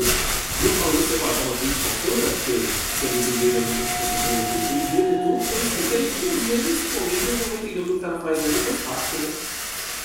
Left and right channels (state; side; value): identical; both; correlation 1.00